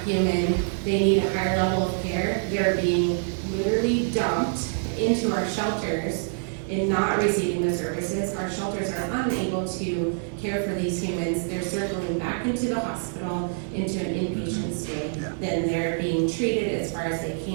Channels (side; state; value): left; silent; digital silence